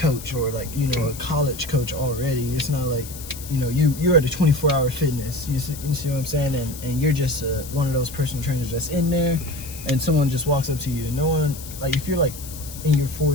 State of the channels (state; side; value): noise; left; hiss, 13 dB below the sound